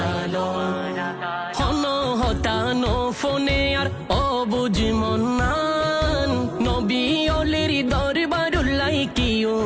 হন হতানো ফোনে আর অবুঝ মন্নান, নবী অলির দরবারুল্লাই কি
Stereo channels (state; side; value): identical; both; correlation 1.00